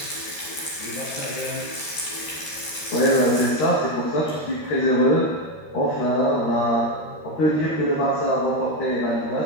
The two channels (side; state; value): right; late; 13 ms